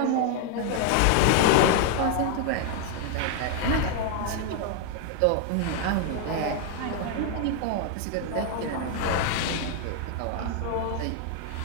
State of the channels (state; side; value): different; both; correlation 0.00